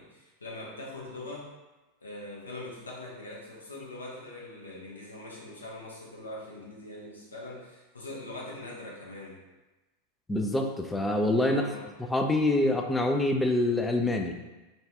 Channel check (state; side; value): normal; both; correlation 0.57